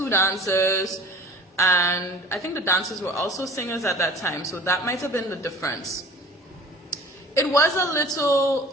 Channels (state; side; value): normal; both; correlation 0.44